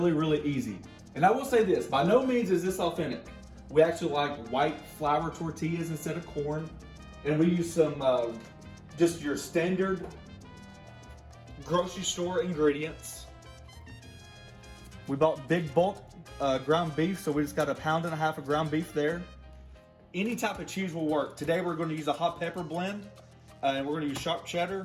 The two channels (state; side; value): identical; both; correlation 1.00